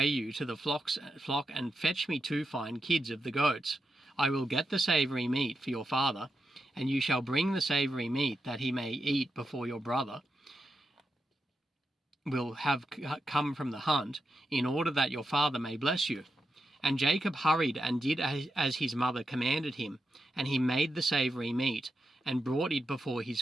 you, to the flock, and fetch me 2 fine kids of the goats. I will get the savoury meat for your father, and you shall bring the savoury meat, that he may eat before your brother will have come from the hunt, in order that your father may bless you. And Jacob hurried and did as his mother commanded him, and he made the savoury meat, and brought it before his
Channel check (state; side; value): normal; both; correlation 0.87